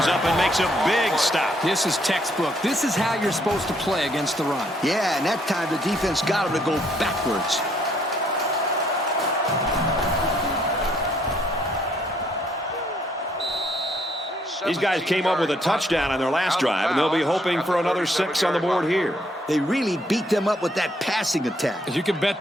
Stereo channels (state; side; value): normal; both; correlation 0.68